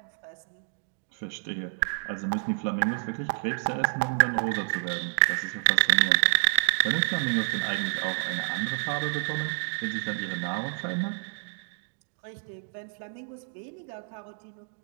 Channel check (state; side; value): silent; left; digital silence